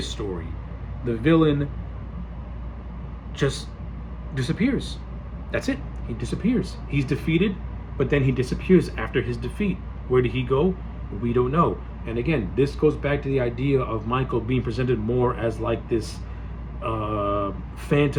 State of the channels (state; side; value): identical; both; correlation 1.00